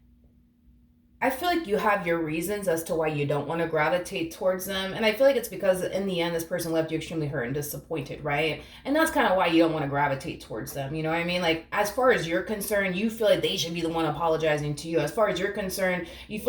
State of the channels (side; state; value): both; identical; correlation 1.00